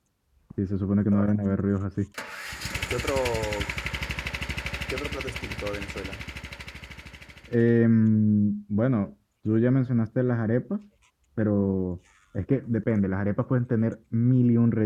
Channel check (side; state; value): both; identical; correlation 1.00